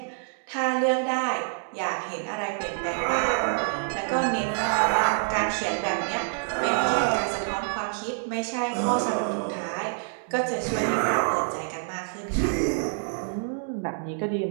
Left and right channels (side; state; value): left; silent; 60 dB below the other